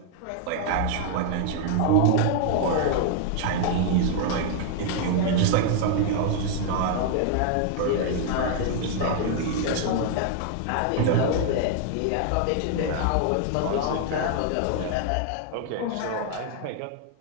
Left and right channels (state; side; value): different; both; correlation 0.00